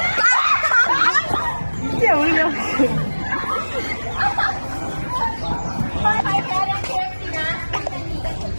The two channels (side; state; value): both; inverted; correlation -1.00